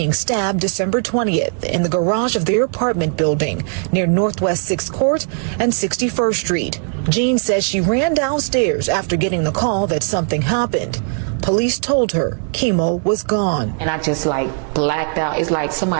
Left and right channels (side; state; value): left; silent; 56 dB below the other